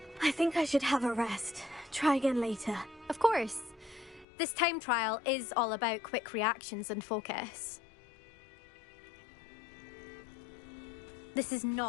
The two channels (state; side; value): drops out; right; at 4.2 s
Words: I think I should have a rest. Try again later. Of course. This time trial is all about quick reactions and focus. This is